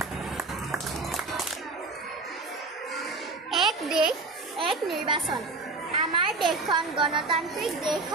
এক দেশ এক নিৰ্বাচন আমাৰ দেশখন গণতান্ত্ৰিক দেশ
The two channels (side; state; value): left; quieter; 3.6 dB